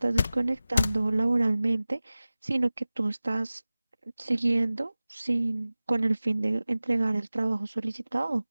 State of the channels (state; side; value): inverted; both; correlation -0.97